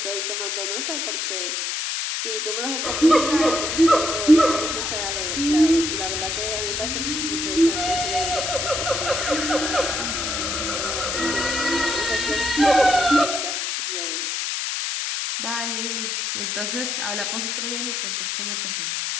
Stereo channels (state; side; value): noise; left; hiss, 1 dB below the sound